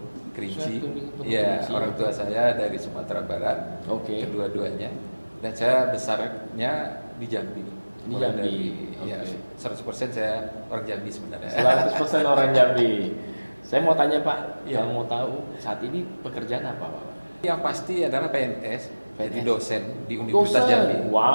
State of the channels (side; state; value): both; inverted; correlation -1.00